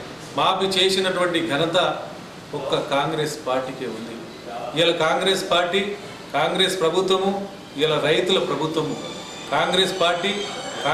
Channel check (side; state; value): both; identical; correlation 1.00